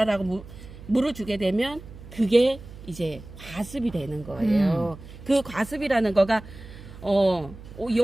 물을 주게 되면 그게 이제 과습이 되는 거예요. 그 과습이라는 거가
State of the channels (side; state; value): right; noise; hum, 16 dB below the sound